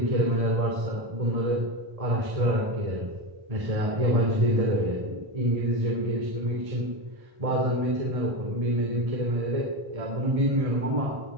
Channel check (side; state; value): left; late; 1.7 ms